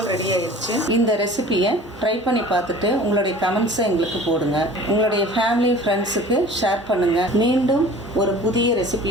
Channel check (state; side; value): normal; both; correlation 0.44